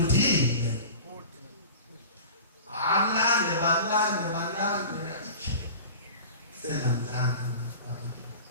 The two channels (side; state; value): both; inverted; correlation -0.37